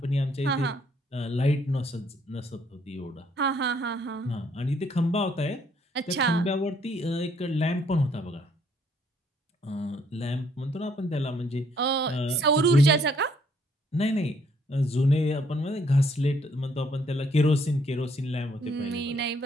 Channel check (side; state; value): both; normal; correlation 0.67